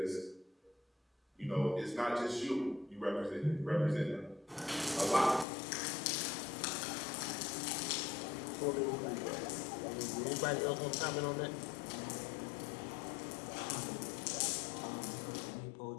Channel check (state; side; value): drops out; right; at 5.5 s